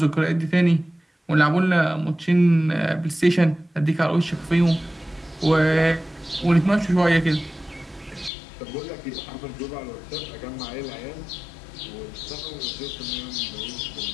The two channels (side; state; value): right; drops out; at 8.3 s